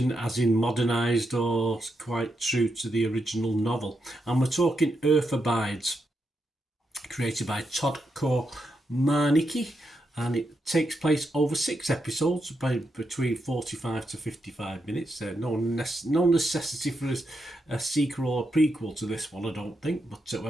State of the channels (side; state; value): both; normal; correlation 0.84